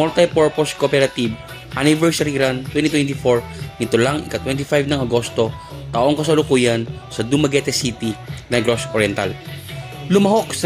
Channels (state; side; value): identical; both; correlation 1.00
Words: Cooperative Anniversary Run 2024 nito lang ika-25 ng Agosto taong kasalukuyan sa Dumaguete City, Negros Oriental. Lumahok